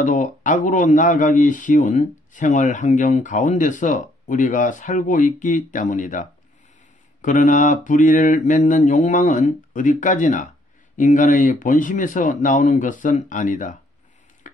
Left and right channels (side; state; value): both; normal; correlation 0.67